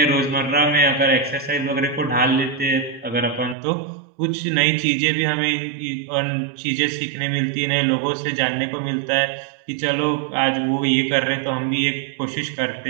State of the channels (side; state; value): left; drops out; at 3.6 s